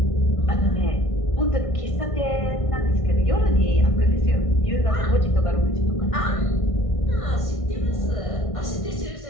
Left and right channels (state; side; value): late; right; 1.6 ms